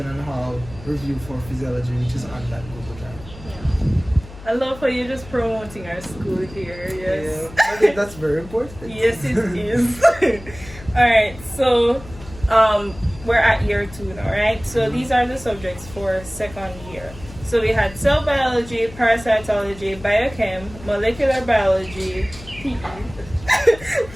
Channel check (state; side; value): noise; left; hum, 17 dB below the sound